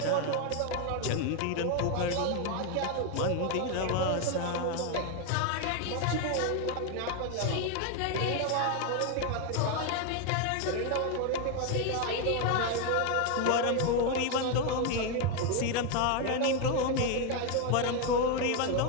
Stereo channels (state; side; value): different; both; correlation 0.01